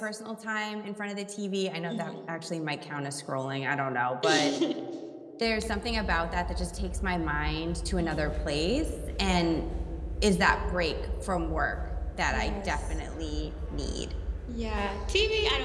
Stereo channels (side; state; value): both; identical; correlation 1.00